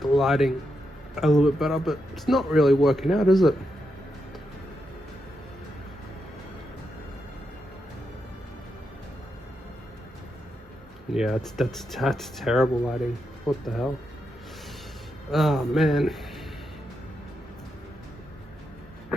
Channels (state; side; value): normal; both; correlation 0.84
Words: the lighting a little bit better, but it's not really working out, is it? Yeah, that's terrible lighting. What the hell? Oh man.